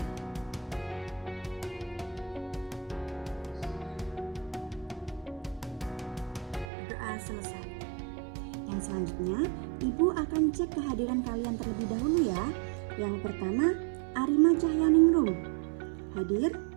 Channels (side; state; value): left; drops out; at 6.7 s